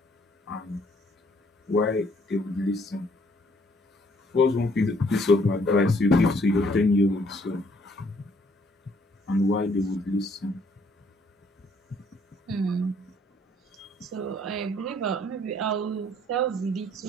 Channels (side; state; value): both; normal; correlation 0.64